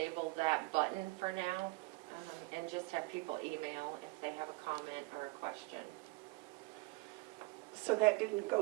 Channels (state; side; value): quieter; left; 24.3 dB